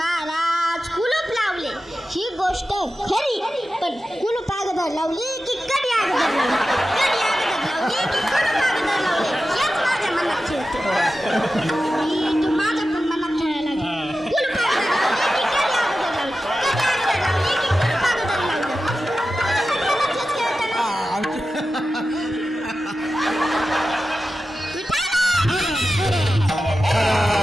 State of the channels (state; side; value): normal; both; correlation 0.93